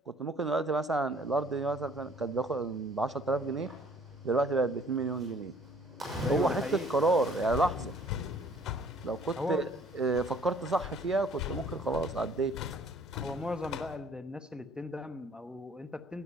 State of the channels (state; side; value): normal; both; correlation 0.57